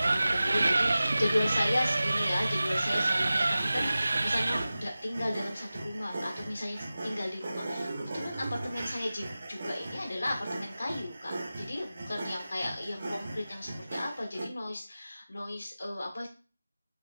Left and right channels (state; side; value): inverted; both; correlation -0.96